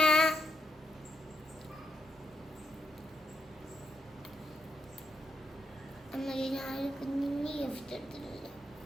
അമ്മയ്ക്ക് ഞാൻ കുഞ്ഞിന് ഗിഫ്റ്റ് എടുത്തിട്ടില്ല.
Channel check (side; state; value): both; normal; correlation 0.80